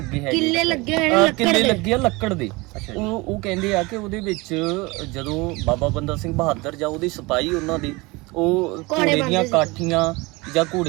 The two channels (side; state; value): left; quieter; 24.0 dB